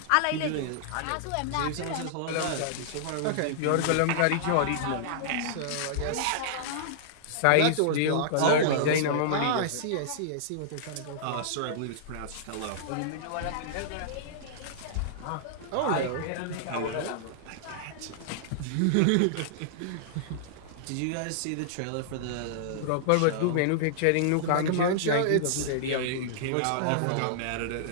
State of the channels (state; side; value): different; both; correlation -0.01